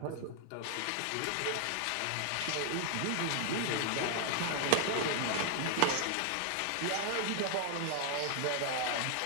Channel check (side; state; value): both; different; correlation 0.00